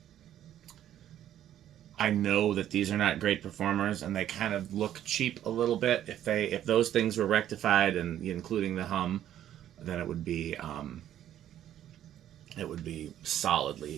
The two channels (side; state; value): left; quieter; 11.4 dB